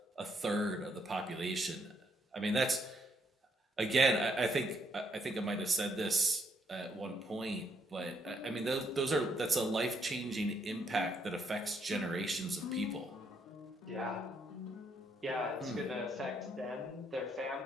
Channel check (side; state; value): both; normal; correlation 0.73